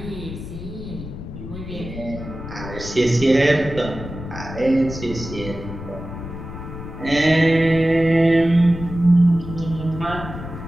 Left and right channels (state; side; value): noise; left; rumble, 10 dB below the sound